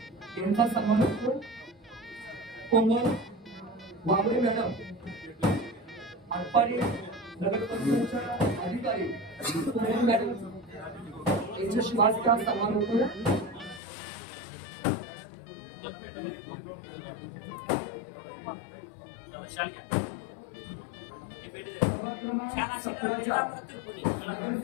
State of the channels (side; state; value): right; drops out; at 13.8 s